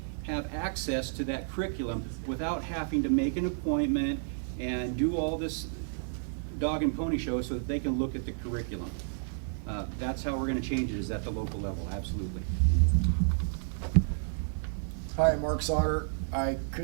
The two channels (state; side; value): silent; left; digital silence